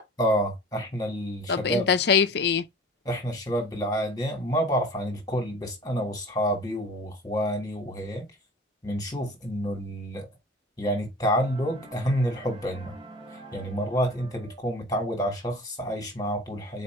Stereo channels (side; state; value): both; normal; correlation 0.41